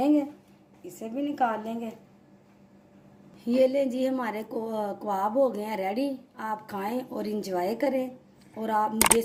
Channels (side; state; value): both; identical; correlation 1.00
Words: इसे भी निकाल लेंगे। ये लें जी हमारे कबाब हो गए हैं रेडी। आप खाएं और इंजॉय करें, और आप मुझे